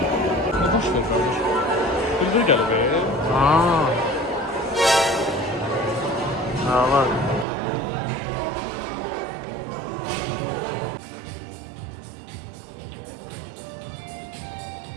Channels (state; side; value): drops out; left; at 7.5 s